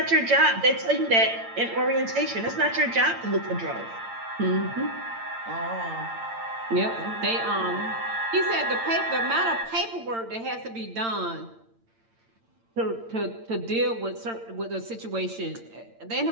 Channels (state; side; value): late; left; 8.8 ms